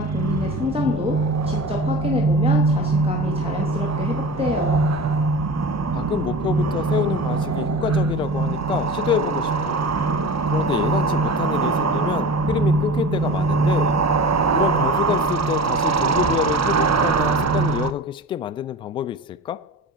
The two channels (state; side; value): normal; both; correlation 0.34